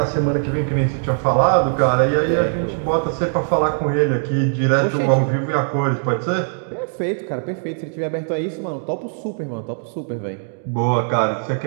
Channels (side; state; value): left; silent; digital silence